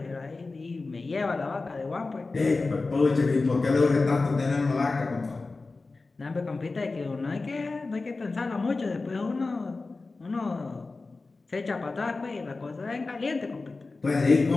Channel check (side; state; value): right; quieter; 3.7 dB